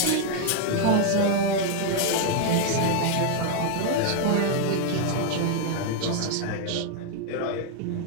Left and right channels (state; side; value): different; both; correlation 0.00